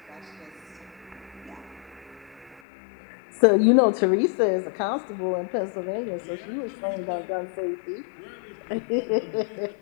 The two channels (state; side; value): drops out; right; at 2.6 s